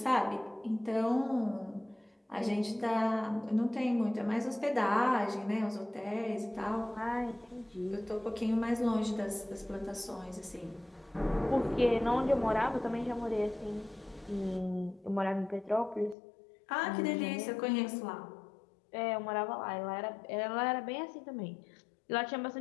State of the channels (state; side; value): drops out; right; at 16.2 s